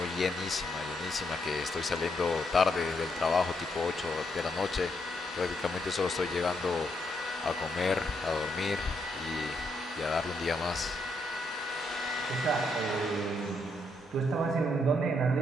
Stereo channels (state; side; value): normal; both; correlation 0.77